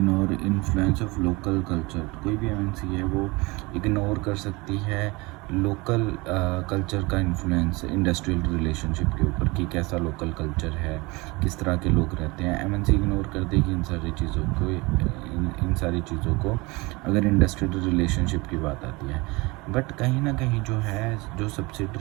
influence of local culture. कोई भी एमएनसी है वो इग्नोर कर सकती है लोकल कल्चर का इन्फ्लुएंस इंडस्ट्रियल रिलेशनशिप के ऊपर, कि कैसा लोकल कल्चर है, किस तरह के लोग रहते हैं। एमएनसी इग्नोर कर देगी इन सारी चीज़ों को अगर इंडस्ट्रियल रिलेशनशिप की बात आती है। बट कहीं ना कहीं जो है, जो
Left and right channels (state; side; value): quieter; left; 24.6 dB